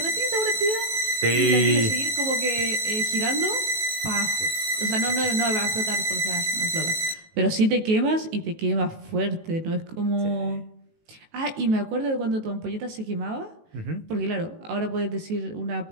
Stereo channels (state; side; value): late; left; 18 ms